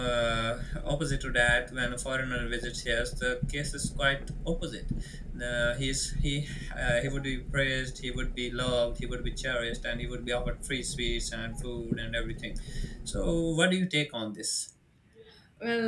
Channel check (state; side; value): identical; both; correlation 1.00